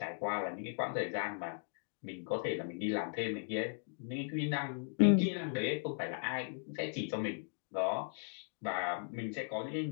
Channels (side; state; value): right; silent; digital silence